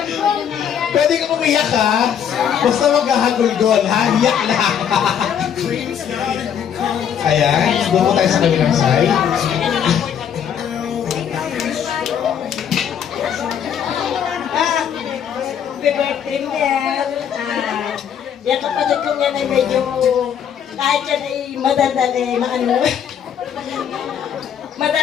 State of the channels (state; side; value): quieter; right; 8.6 dB